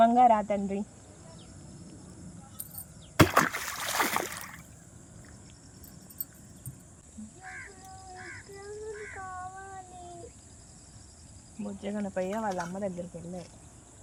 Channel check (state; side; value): identical; both; correlation 1.00